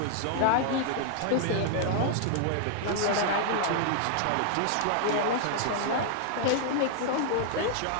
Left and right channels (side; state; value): both; different; correlation -0.01